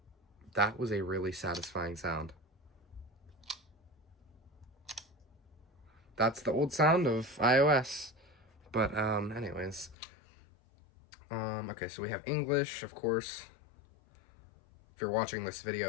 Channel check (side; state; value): right; drops out; at 10.0 s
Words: that was a really satisfying sound. That's the old sound of iOS. But anyways, okay, so we have English, of course. If you're watching this